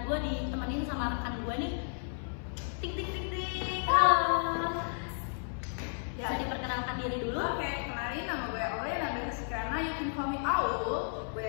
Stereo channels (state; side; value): silent; right; 56 dB below the other